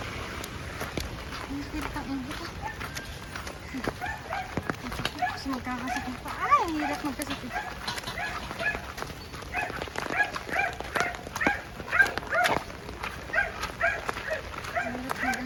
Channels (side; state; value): both; identical; correlation 1.00